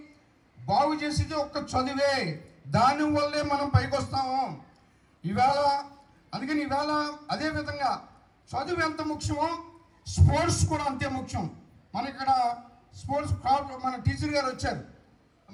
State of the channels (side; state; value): both; identical; correlation 1.00